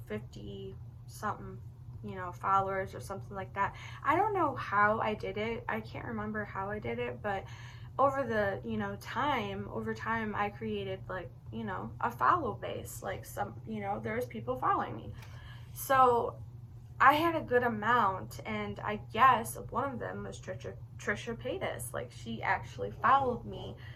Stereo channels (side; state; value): both; identical; correlation 1.00